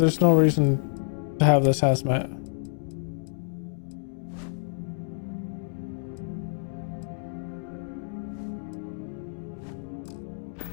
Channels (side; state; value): right; silent; digital silence